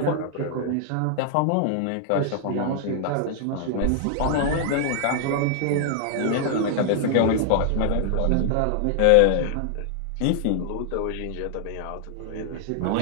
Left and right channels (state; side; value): different; both; correlation 0.00